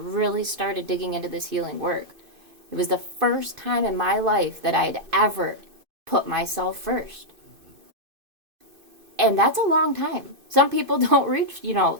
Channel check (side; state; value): left; late; 2.5 ms